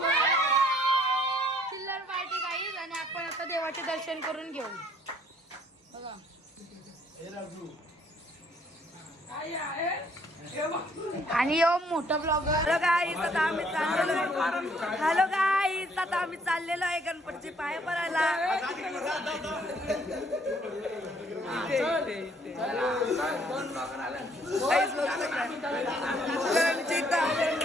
चिल्लर पार्टी गाईज. आणि आपण आता देवाचे दर्शन करून घेऊ. बघा आणि यो मोठा ब्लॉगर. Hello guys. आता आम्ही चाललेलो आहे. Hello guys. आता आम्ही चाललेलो आहे गणपतीचे पाय पडायला.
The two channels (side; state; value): both; normal; correlation 0.63